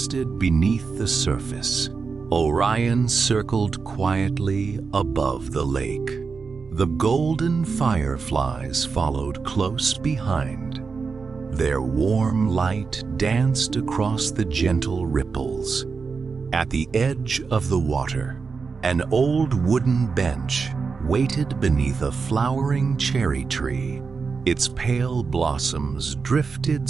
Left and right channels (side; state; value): left; quieter; 5.0 dB